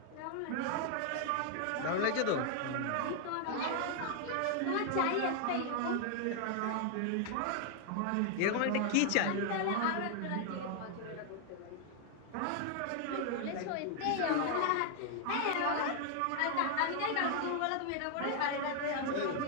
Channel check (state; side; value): different; both; correlation 0.00